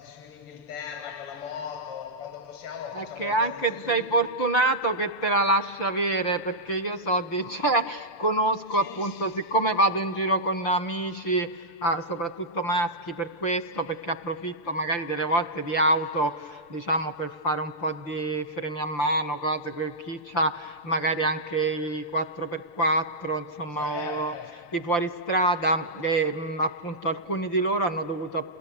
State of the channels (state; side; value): late; right; 6.8 ms